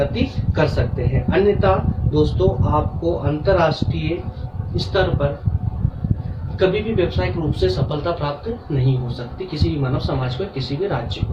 कर सकते हैं। अन्यथा दोस्तों आपको अंतर्राष्ट्रीय स्तर पर कभी भी व्यावसायिक रूप से सफलता प्राप्त नहीं हो सकती किसी भी मानव समाज को, किसी भी राज्य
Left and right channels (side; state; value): both; identical; correlation 1.00